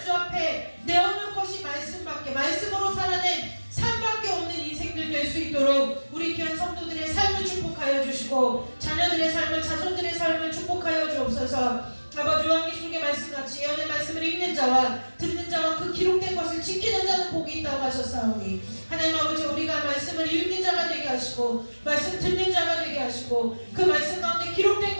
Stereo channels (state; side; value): inverted; both; correlation -1.00